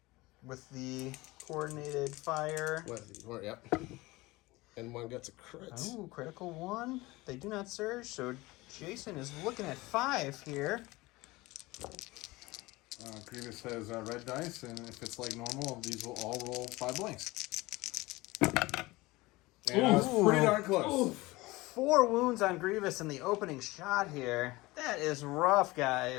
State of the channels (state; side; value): quieter; right; 21.0 dB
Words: with the coordinated fire. Yep. And 1 gets a crit. Ooh, critical 1. They do not surge, so Jason is looking at 5 here. Grievous has red dice, and if it's like normal, these will all roll 5 blanks. And I was pretty darn close. 4 wounds on Grievous in the opening shot here. That is rough,